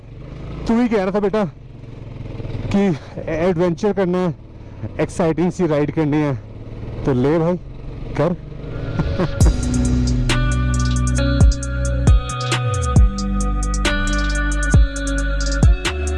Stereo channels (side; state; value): both; identical; correlation 1.00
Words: तू ही कह रहा था बेटा कि एडवेंचर करना है, एक्साइटिंग सी राइड करनी है, तो ले भाई कर.